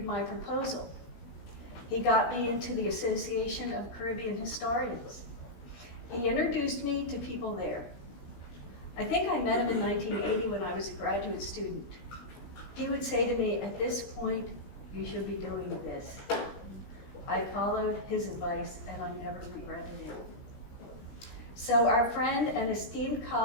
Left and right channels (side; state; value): right; late; 17 ms